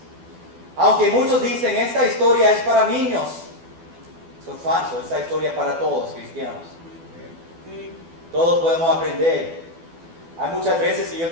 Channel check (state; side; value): late; left; 12 ms